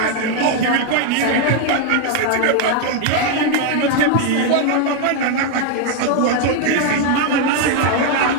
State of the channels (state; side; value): different; both; correlation 0.01